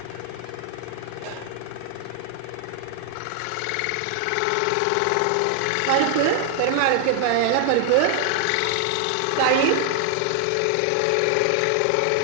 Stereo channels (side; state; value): both; different; correlation 0.00